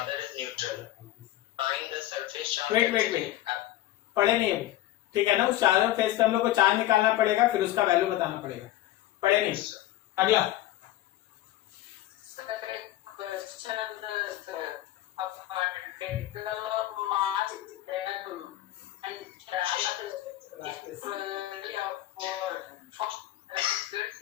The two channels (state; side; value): quieter; right; 14.8 dB